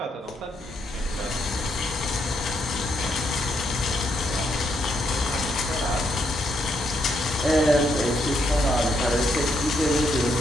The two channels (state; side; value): normal; both; correlation 0.76